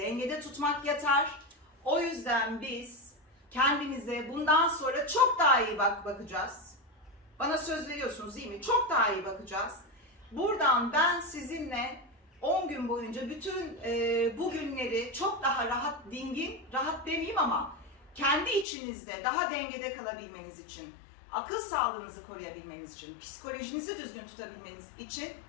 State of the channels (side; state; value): right; drops out; at 18.7 s